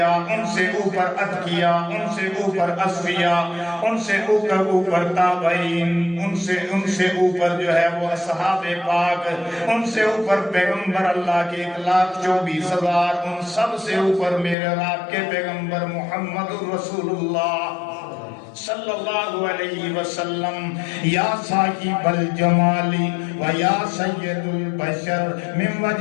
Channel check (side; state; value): right; drops out; at 14.6 s